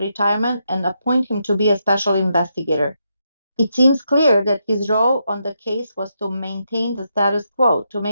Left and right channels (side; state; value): both; inverted; correlation -0.82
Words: and appoint him to be a special investigator. It seems clear that his role on the case was to maintain the status quo, to